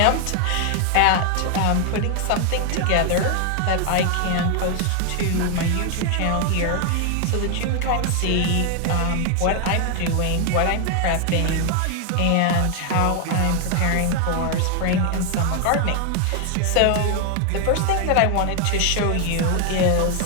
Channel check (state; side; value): different; both; correlation 0.00